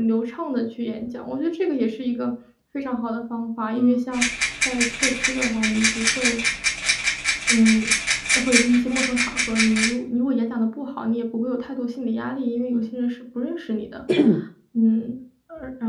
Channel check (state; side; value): identical; both; correlation 1.00